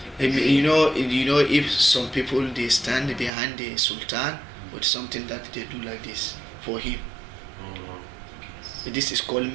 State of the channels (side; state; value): left; drops out; at 3.3 s